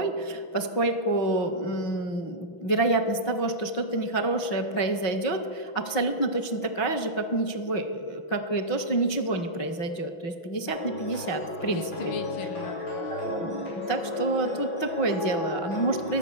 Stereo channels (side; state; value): right; late; 6.0 ms